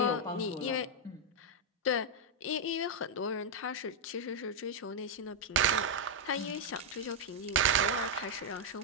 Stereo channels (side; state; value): both; normal; correlation -0.03